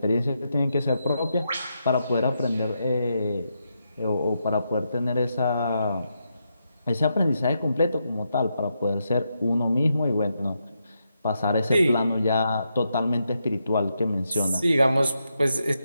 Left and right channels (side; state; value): both; inverted; correlation -0.83